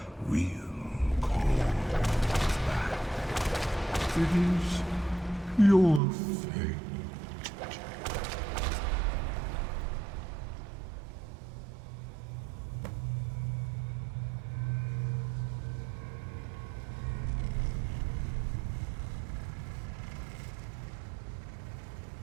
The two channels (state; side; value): drops out; left; at 6.0 s